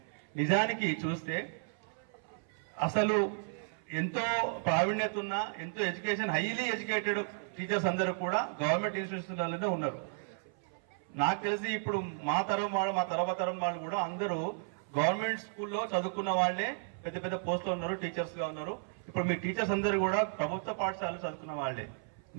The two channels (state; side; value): silent; left; 55 dB below the other